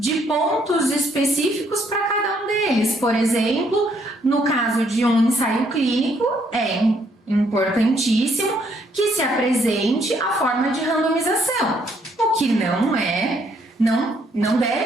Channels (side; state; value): both; normal; correlation 0.70